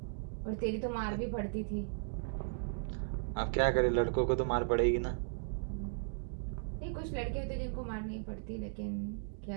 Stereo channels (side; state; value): left; silent; digital silence